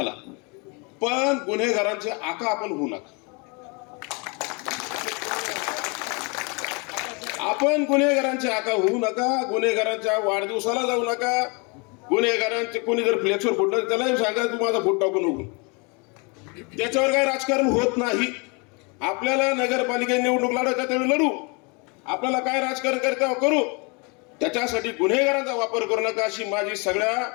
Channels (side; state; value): right; quieter; 31.6 dB